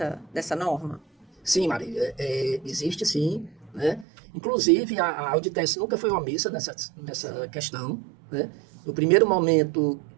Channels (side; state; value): left; drops out; at 4.0 s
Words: norma? Sim, Marília, existe sim. Né? Inclusive, a Auditec nunca foi omissa nessa questão. Né? No primeiro momento